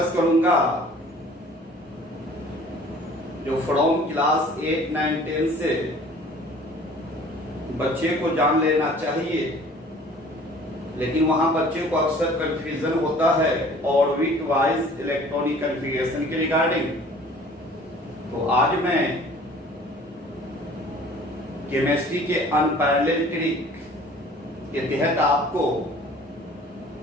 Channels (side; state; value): both; normal; correlation 0.50